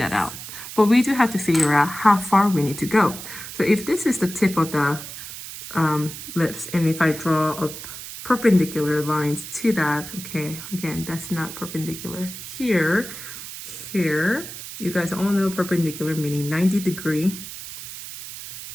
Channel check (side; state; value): right; noise; hiss, 11 dB below the sound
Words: out. But we do have to figure out how far we need to go. So if this is the tip of the lips, and if I draw a perpendicular lines to that, okay, again, that's not perpendicular. Here, you guys all know perpendicular meaning 90-degree